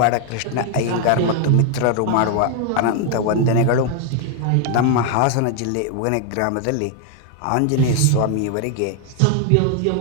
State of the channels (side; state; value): both; different; correlation 0.00